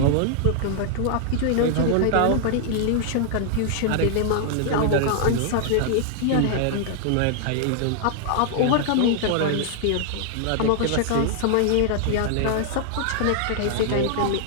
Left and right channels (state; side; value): different; both; correlation -0.01